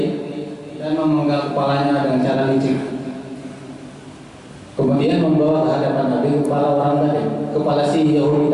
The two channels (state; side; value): identical; both; correlation 1.00